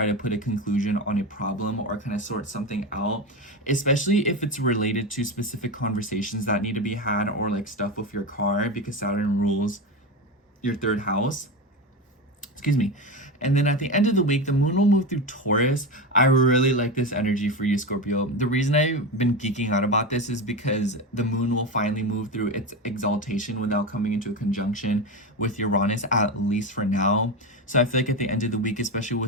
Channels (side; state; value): both; normal; correlation 0.18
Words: to put a conclusion on a problem, or kind of sort something out, especially if it's related to specific conversations that need to be had, or like stuff with your car, because Saturn rules your 3rd house. Excuse me. And then at the end of the week, the moon will move through Taurus. I really like this energy for you, Scorpio. The reason I've been geeking out about this is because the moon will finally move through its exaltation without coming into a conjunction with Uranus, at least for now. So I feel like at the end of the week, especially